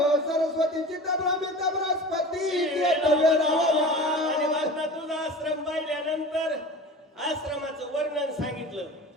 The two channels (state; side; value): normal; both; correlation 0.36